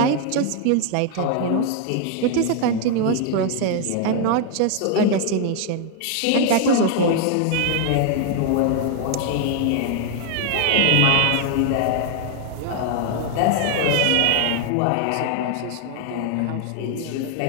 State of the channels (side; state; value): both; different; correlation 0.00